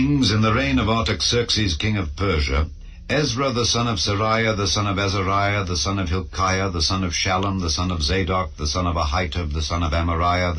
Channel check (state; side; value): identical; both; correlation 1.00